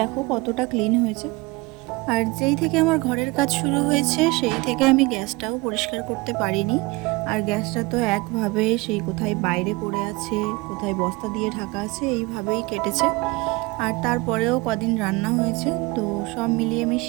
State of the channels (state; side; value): quieter; left; 24.2 dB